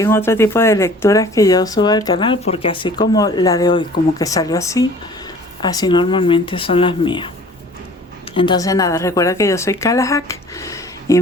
otro tipo de lecturas que yo suba al canal, porque así como la de hoy, como que salió así, así normalmente son las mías. Entonces nada, recuerda que yo soy Kalahak y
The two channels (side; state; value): both; normal; correlation 0.49